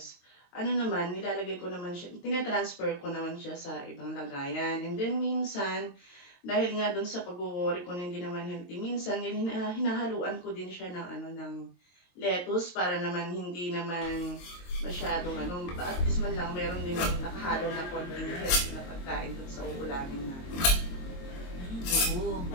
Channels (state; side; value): late; right; 22 ms